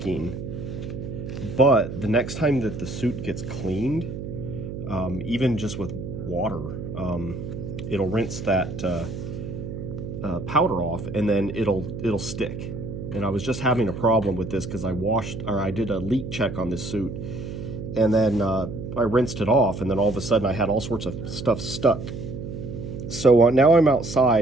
But the next time that the suit gets cleaned, even just with water, it'll rinse that powder off, and then it'll stick. And I was just having a problem with this because I did a leak check on this suit, and then I rinsed it off, and then all of a sudden I had all sorts of stuff stuck. So now I'm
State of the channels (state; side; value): noise; right; hum, 8 dB below the sound